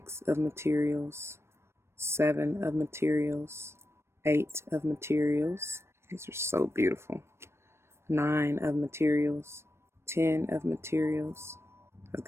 of materials. 7 of materials. 8 of materials. These are so beautiful. 9 of materials. 10 of materials. I was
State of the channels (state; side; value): late; left; 0.13 ms